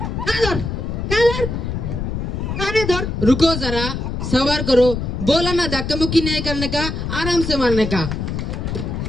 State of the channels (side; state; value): left; noise; rumble, 3 dB below the sound